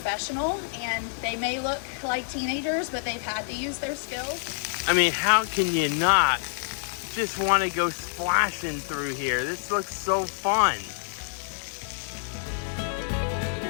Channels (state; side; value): silent; right; 60 dB below the other